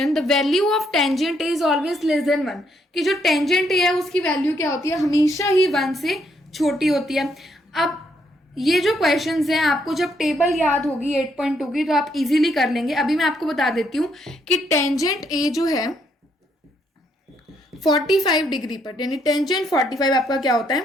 the value of tangent is always less than 1. कि जो टेंजेंट है उसकी वैल्यू क्या होती है, हमेशा ही 1 से छोटी होती है। अब ये जो क्वेश्चंस हैं आपको जब टेबल याद होगी 8.2 की तो आप इजीली कर लेंगे। अभी मैं आपको बता देती हूँ कि टेंजेंट ए जो है 45 डिग्री पर, यानी टेंजेंट 45 आपका क्या होता है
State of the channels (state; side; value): normal; both; correlation 0.73